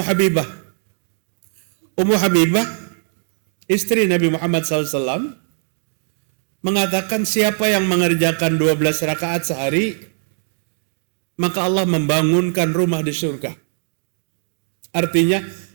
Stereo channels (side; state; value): left; silent; digital silence